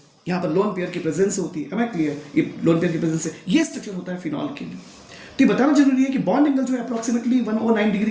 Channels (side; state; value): both; identical; correlation 1.00